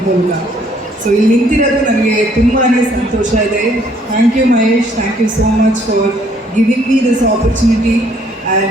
ಮೂಲಕ. ಸೊ ಇಲ್ಲಿ ನಿಂತಿರೋದು ನನಗೆ ತುಂಬಾ ಸಂತೋಷ ಇದೆ. Thank you Mahesh, thank you so much for giving me this opportunity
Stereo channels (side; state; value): both; normal; correlation 0.64